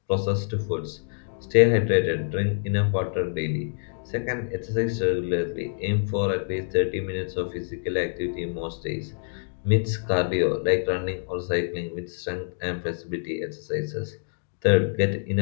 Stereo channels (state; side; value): silent; right; digital silence